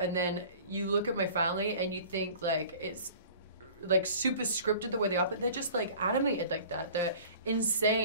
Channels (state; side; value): inverted; both; correlation -0.44